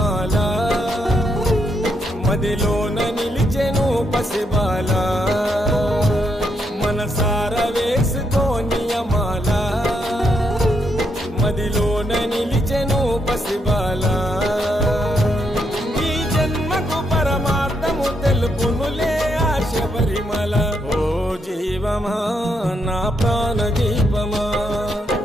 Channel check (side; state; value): both; normal; correlation 0.78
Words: మదిలోన నిలిచెను పసిబాల మనసార వేసుకోని మాల మదిలోన నిలిచెను పసిబాల ఈ జన్మకు పరమార్థము తెలుపునులే ఆశ పరిమళ ఓ జీవమా నా ప్రాణదీపమా